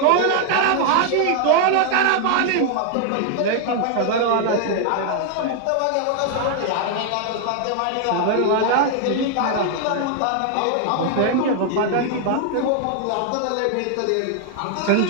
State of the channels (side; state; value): both; different; correlation 0.00